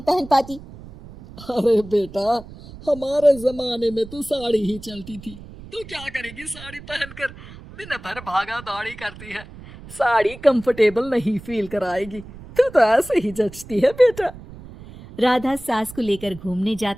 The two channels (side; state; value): right; noise; rumble, 17 dB below the sound